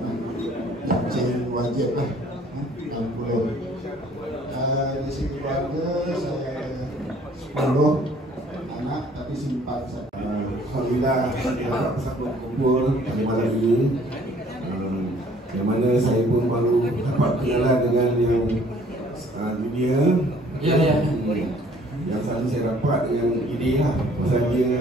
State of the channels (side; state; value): both; normal; correlation 0.57